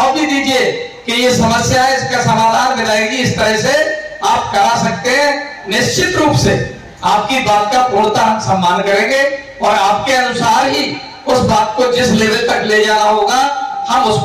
भी दीजिए कि ये समस्या है, इसका समाधान मिलेगी, इस तरह से आप करा सकते हैं। निश्चित रूप से आपकी बात का पूर्णतः हम सम्मान करेंगे और आपके अनुसार ही उस बात को जिस लेवल तक ले जाना होगा हम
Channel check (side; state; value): both; identical; correlation 1.00